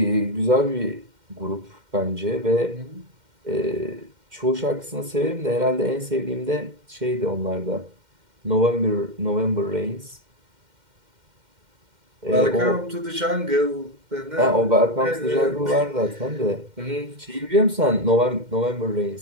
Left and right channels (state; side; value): late; left; 2.1 ms